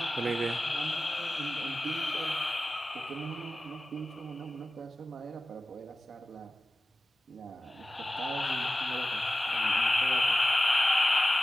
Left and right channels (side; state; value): both; normal; correlation 0.94